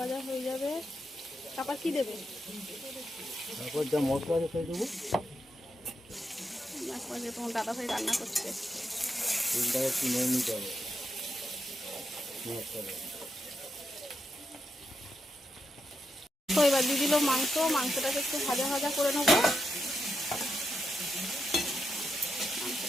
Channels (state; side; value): normal; both; correlation 0.84